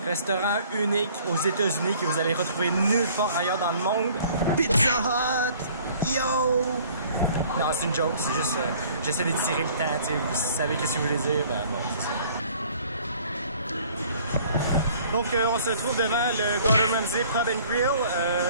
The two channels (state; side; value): inverted; both; correlation -0.54